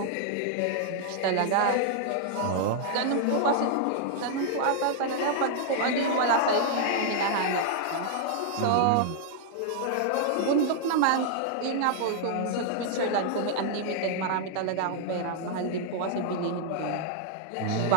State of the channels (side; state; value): both; different; correlation -0.01